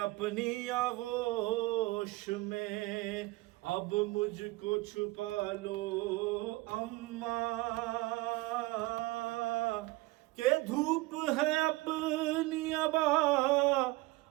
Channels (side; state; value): left; quieter; 21.3 dB